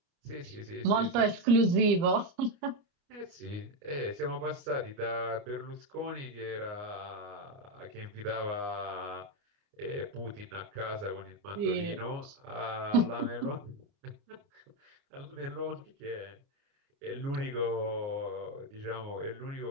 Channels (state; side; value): late; left; 29 ms